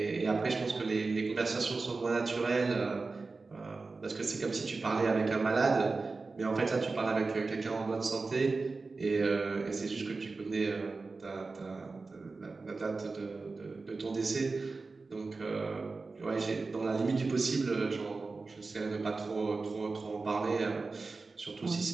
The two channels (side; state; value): left; quieter; 3.9 dB